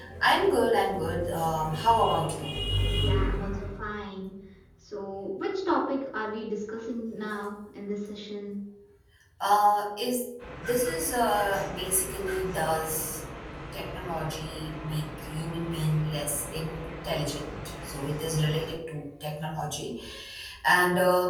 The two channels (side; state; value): both; identical; correlation 1.00